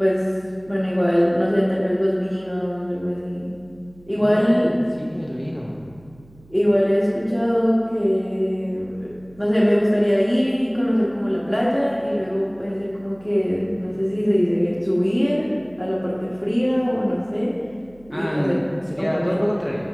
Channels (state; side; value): noise; right; hum, 26 dB below the sound